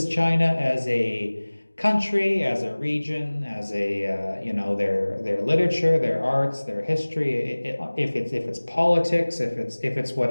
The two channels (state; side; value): inverted; both; correlation -1.00